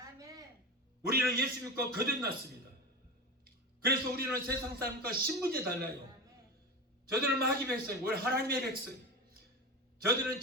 우리는 예수 믿고 거듭났습니다. 그래서 우리는 세상 사람과 신분이 달라요. 저들은 마귀 백성이고 우리 하나님의 백성. 저들은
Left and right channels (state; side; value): normal; both; correlation 0.24